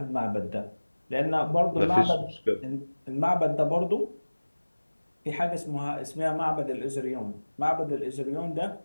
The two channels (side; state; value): both; inverted; correlation -1.00